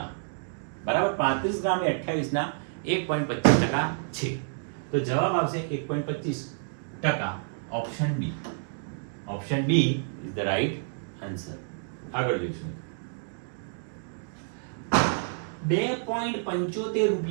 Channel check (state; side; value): silent; left; digital silence